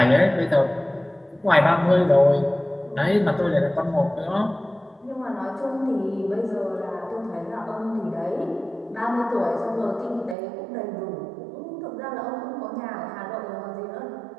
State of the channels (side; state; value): left; drops out; at 10.4 s